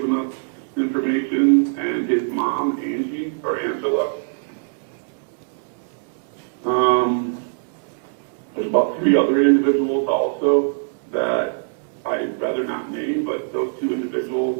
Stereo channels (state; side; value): silent; left; digital silence